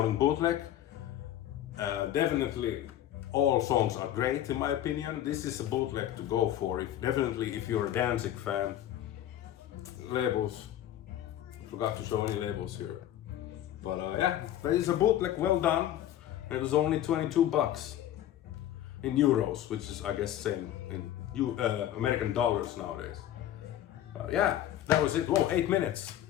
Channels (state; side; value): quieter; right; 12.1 dB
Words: bootleg. Definitely all songs are great in my opinion. This is a bootleg to go for, definitely if you're a Danzig fan. Labels, forgot to show any labels here. But yeah, there is a bootleg, well done. And it was only 22 bucks in euros, which is I guess same in American dollars nowadays. Yeah, that was it. Whoa, 8 minutes.